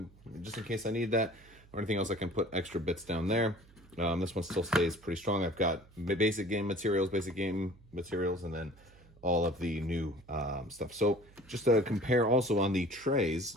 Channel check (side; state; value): right; noise; hum, 25 dB below the sound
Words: just in case I need that or anything else, I can put extra bits down there. This one still stays pretty strong. I've got basic game materials, and then all of the new stuff. So just to compare also on the trays,